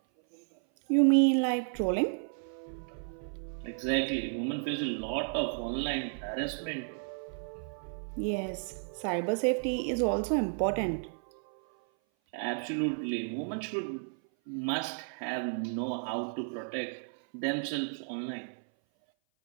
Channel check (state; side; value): silent; left; 56 dB below the other